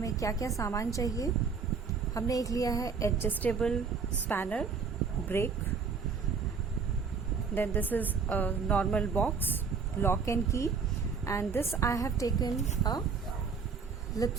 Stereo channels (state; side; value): quieter; left; 5.5 dB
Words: क्या क्या सामान चाहिए। हमने एक लिया है adjustable spanner, break, then this is a normal box, lock and key, and this I have taken a